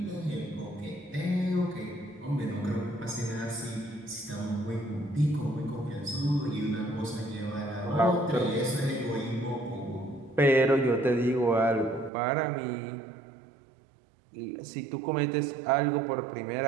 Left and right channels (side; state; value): left; drops out; at 12.1 s